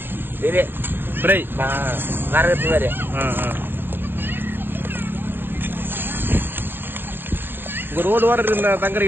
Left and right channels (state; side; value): late; left; 0.10 ms